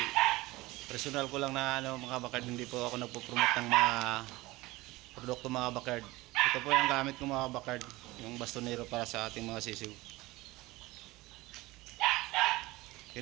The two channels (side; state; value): left; quieter; 20.0 dB